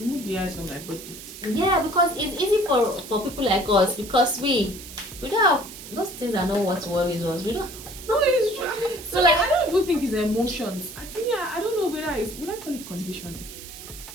the eyes from my body. Yeah, because it's easy for people like us, because we don't have those things. Are not what worries us. We don't. No, it's true. So I don't even think it's emotions. I think I don't know whether would I call it conditioning?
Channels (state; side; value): noise; right; hiss, 14 dB below the sound